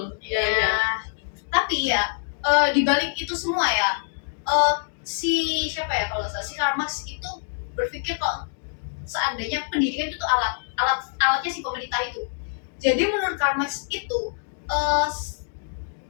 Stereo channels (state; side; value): silent; right; digital silence